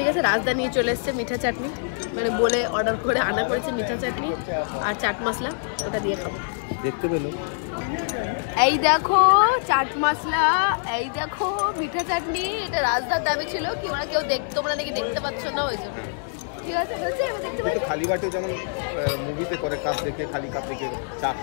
আছে। রাজধানী চলে এসছে মিঠা চাটনি, মানে বলে অর্ডার করে আনা করেছে মিঠা চাটনি আর চাট মশলা, ওটা দিয়ে খাবো। দেখতে পেলো, এই দেখো চাট মশলা, এই দেখো মিঠা চাটনি। এটা রাজদার দাবি ছিল কি ওরা কেউ তোমরা নাকি দেখতে পাচ্ছ না, ওই জন্য। ঠিক আছে, বলছি এবার দেখতে পাচ্ছি খালি বাটে যেমন মুভিতে করে, কাপ দেখে খালি কাপ দেখে চা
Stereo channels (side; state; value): right; silent; 62 dB below the other